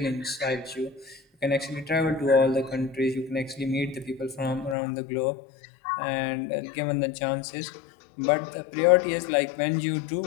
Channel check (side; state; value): right; drops out; at 4.8 s